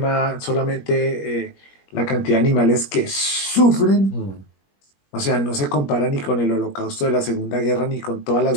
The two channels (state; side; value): late; right; 21 ms